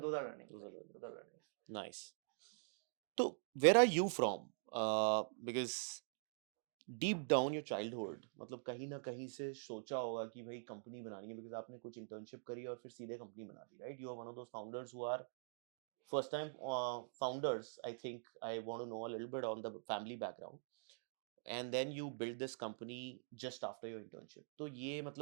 are learnings. Those are learnings. Nice. So, where are you from? Because deep down your childhood, मतलब कहीं ना कहीं से सोचा होगा कि भाई company बनानी है, because आपने कुछ internship करी और फिर सीधे कंपनी बना दी, right? You are one of those founders who are first time founders. I think I want to know a little bit on the family background. And then you build this company just after your internship. तो ये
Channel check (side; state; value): left; silent; digital silence